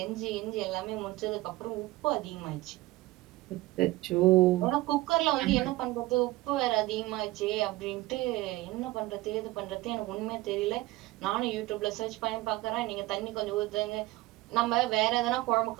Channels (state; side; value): quieter; left; 18.7 dB